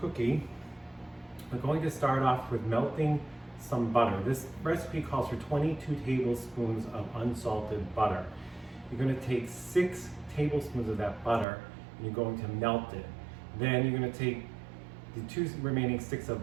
we're going to start off with melting some butter. This recipe calls for 22 tablespoons of unsalted butter. You're going to take 6 tablespoons of that butter and you're going to melt it. Then you're going to take the 2 remaining sticks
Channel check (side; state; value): left; drops out; at 11.5 s